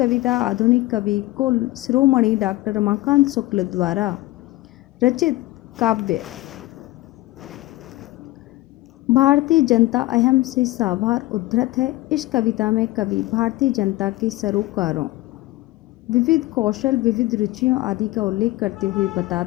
आधुनिक कवि कुल शिरोमणि डॉक्टर रमाकांत शुक्ल द्वारा रचित काव्य भारतीय जनता अयम से साभार उद्धृत है। इस कविता में कवि भारतीय जनता के सरोकारों, विविध कौशल, विविध रुचियों आदि का उल्लेख करते हुए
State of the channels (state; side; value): quieter; right; 18.5 dB